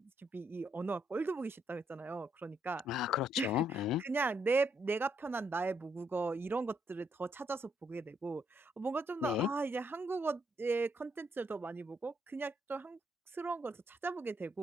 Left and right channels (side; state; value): both; normal; correlation 0.74